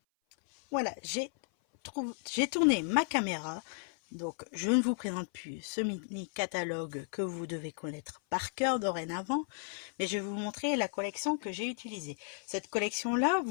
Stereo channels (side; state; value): right; silent; 55 dB below the other